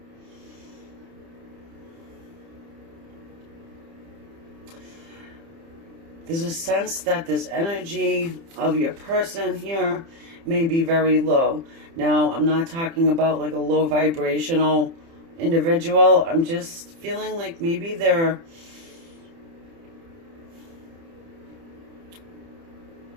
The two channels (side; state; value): left; late; 30 ms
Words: There's a sense that this energy of your person here may be very low. Now, I'm not talking about like a low vibrational individual. I'm just feeling like maybe they're,